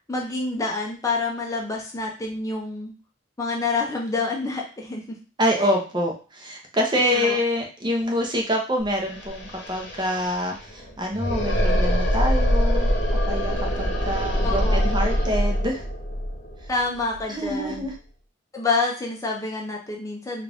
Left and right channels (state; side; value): normal; both; correlation 0.48